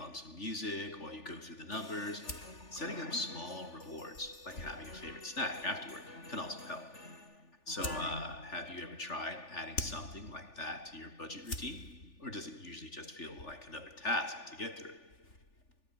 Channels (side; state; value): right; late; 3.4 ms